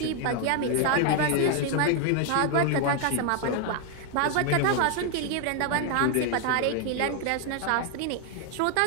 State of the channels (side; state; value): both; different; correlation 0.00